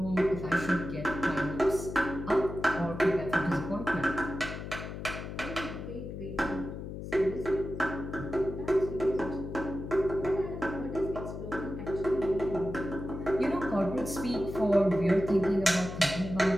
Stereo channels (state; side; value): noise; left; hum, 8 dB below the sound